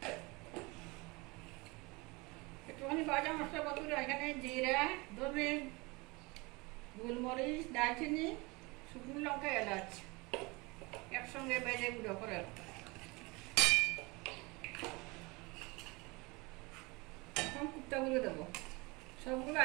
একটুখানি ভাজা মশলা বন্ধুরা। এখানে জিরা, ধনে, গোলমরিচ, দারচিনি, শুকনো লঙ্কা, এলাচ একসঙ্গে ভেজে গুঁড়ো করে। এখন কুপ্তাগুলো দেবো, সবগুলো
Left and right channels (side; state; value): left; quieter; 25.4 dB